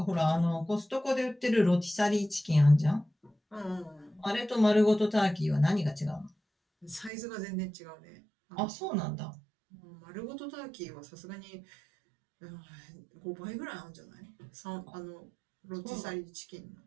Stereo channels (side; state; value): left; drops out; at 7.1 s